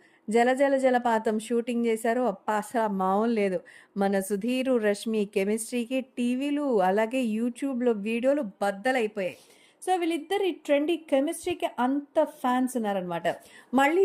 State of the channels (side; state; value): both; identical; correlation 1.00